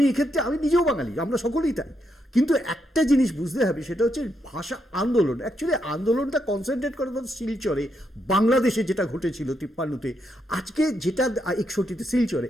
এক্ষেত্রে আমি নিজেও বাঙালি, আমরা সকলেই তাই, কিন্তু একটা জিনিস বুঝতে হবে, সেটা হচ্ছে ভাষা আন্দোলন। অ্যাকচুয়ালি আন্দোলনটা কনসেন্ট্রেট করে শিলচরে, বাংলাদেশে যেটা ঘটেছিল 53-তে, আজকে যেটা 61-তে শিলচরে,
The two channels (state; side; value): normal; both; correlation 0.80